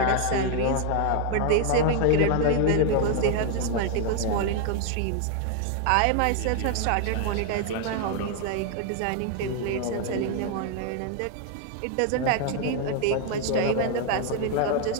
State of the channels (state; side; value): different; both; correlation 0.00